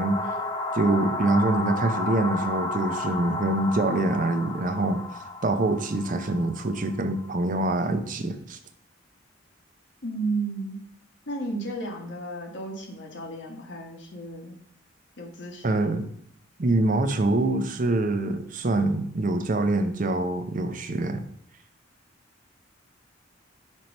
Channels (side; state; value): both; normal; correlation 0.58